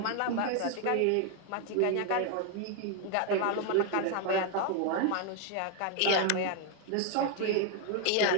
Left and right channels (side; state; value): both; different; correlation 0.00